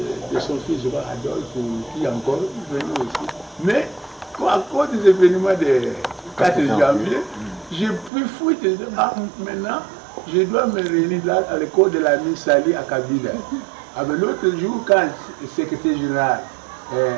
de son fils, je vois Adolphe, qui est encore venu aussi. Mais à cause des événements de 4 janvier, j'ai pu fouiller. Maintenant, je dois me réunir là à l'école de la Miss Sali à Kabila. L'autre jour, quand le secrétaire général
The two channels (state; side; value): drops out; left; at 8.1 s